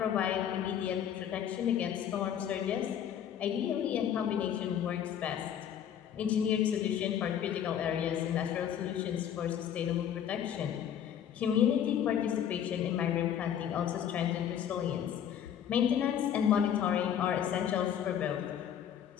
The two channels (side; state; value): right; quieter; 9.4 dB